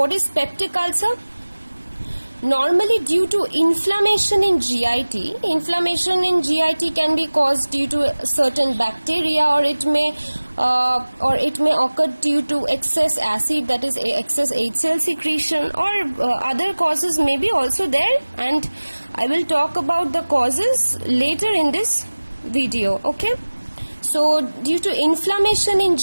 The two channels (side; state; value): both; inverted; correlation -1.00